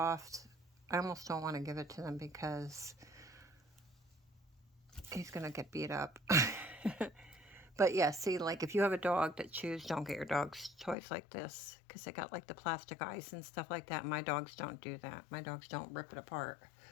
I almost don't want to give it to them because he's going to get beat up. But yeah, see, like if you have a dog that chews, don't get your dog's toys like this because they got like the plastic eyes and stuff like that. My dogs don't do that. My dogs don't rip it apart.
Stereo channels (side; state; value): right; drops out; at 11.0 s